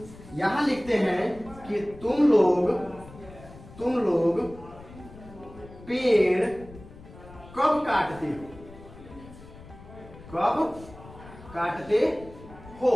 यहां लिखते हैं कि तुम लोग पेड़ कब काटते हो, कब काटते हो।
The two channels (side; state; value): left; noise; rumble, 18 dB below the sound